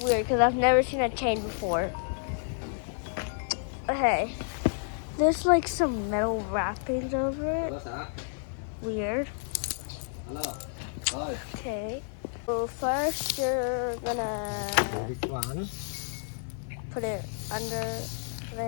weird because I've never seen a chain before. Okay, there's like some metal wrappings over it. Weird. Okay. So first you're gonna put it under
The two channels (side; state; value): right; silent; 58 dB below the other